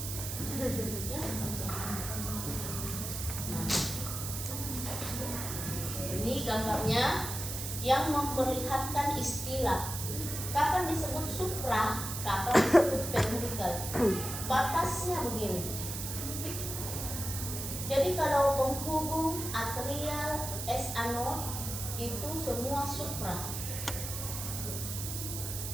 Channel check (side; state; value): right; noise; hiss, 5 dB below the sound